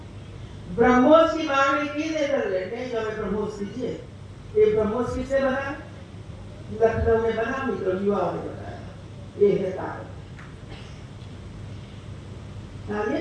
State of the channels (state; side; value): identical; both; correlation 1.00